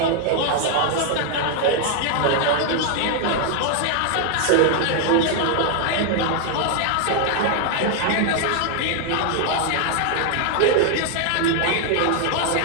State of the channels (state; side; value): different; both; correlation 0.00